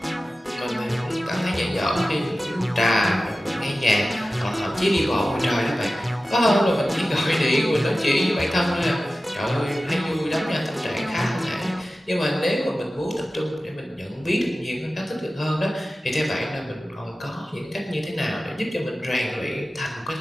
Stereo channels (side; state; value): both; normal; correlation 0.95